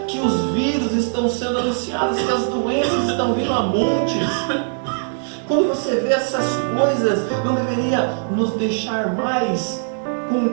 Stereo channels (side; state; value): left; silent; 65 dB below the other